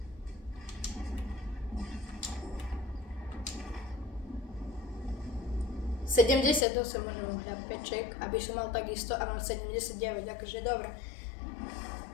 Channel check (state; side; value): drops out; right; at 6.7 s